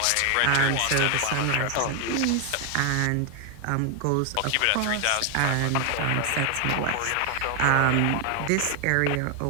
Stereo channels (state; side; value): different; both; correlation 0.00